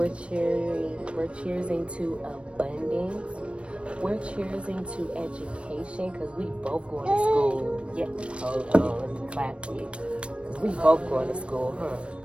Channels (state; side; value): late; left; 0.060 ms